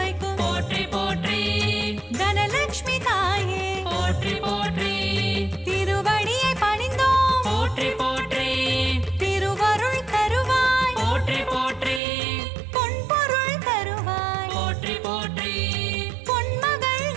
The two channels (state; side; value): drops out; left; at 12.0 s